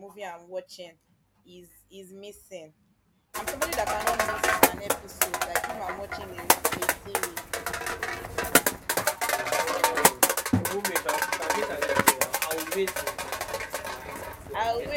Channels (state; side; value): identical; both; correlation 1.00